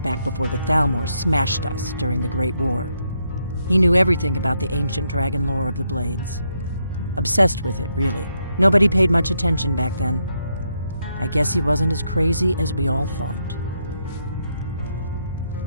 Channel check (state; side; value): inverted; both; correlation -0.78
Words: back before the Thalmor smashed us during the Great War. He knew everything about the ancient dragon lore of the Blades. Obsessed with it, really. Nobody paid much attention back then. I guess he wasn't as crazy as we all thought.